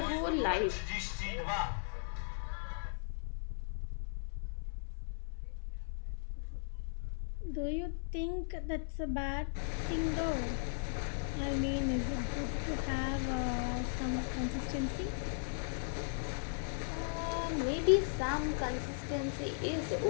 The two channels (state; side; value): silent; right; digital silence